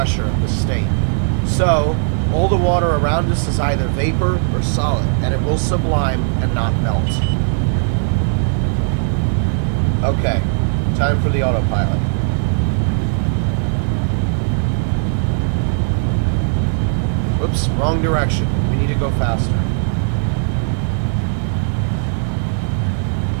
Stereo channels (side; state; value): left; silent; digital silence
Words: at this state. So, all the water around us is either vapor or solid, and it will sublime and not melt. Okay, time for the autopilot. Whoops, wrong direction. We need to go faster.